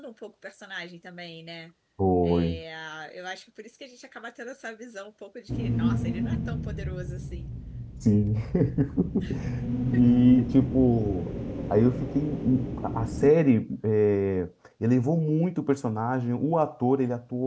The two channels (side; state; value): both; identical; correlation 1.00